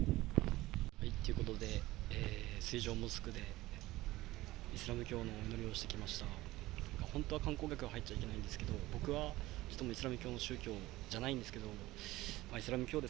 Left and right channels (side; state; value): left; quieter; 17.9 dB